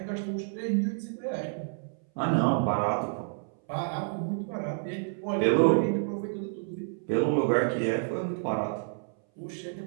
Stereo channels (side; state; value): left; silent; 58 dB below the other